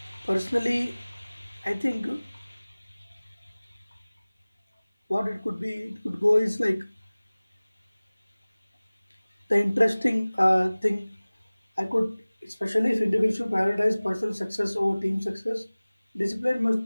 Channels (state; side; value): inverted; both; correlation -0.99